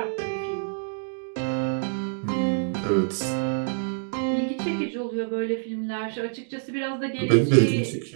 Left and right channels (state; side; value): silent; left; digital silence